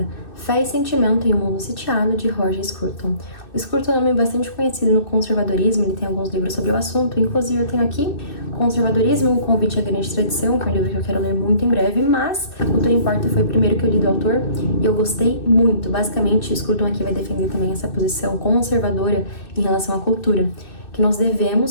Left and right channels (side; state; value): right; late; 2.6 ms